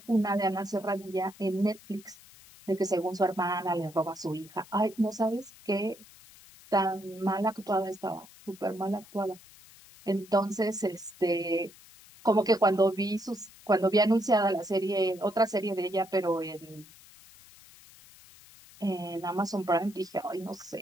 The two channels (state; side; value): noise; left; hiss, 22 dB below the sound